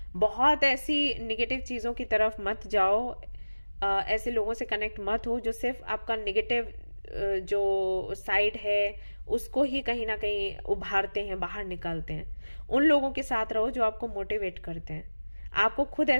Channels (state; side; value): inverted; both; correlation -1.00